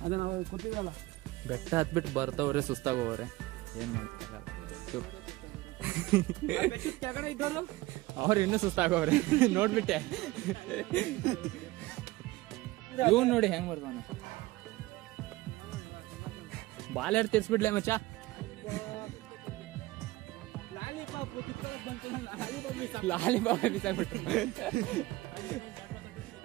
ಬೆಟ್ಟ ಹತ್ಬಿಟ್ಟು ಬರ್ತವ್ರೆ, ಸುಸ್ತಾಗೋವ್ರೆ, ಏನು ಮಾಡ್ತಾರಲ್ಲ. ಅವ್ರು ಇನ್ನೂ ಸುಸ್ತಾಗೋವ್ರೆ ನೋಡ್ಬಿಟ್ಟೆ. ಇವ್ ನೋಡಿ ಹೆಂಗ್ ಬರ್ತಾನೆ. ಬಾಲೆಡ್ ತಿರ್ಸ್ಬಿಡ್ಲೆ ಮಚ್ಚ. ಲಾಲಿಪಾಪ್ ಬಿಸಾಕ್ಬಿಟ್ರು.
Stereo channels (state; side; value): quieter; left; 19.3 dB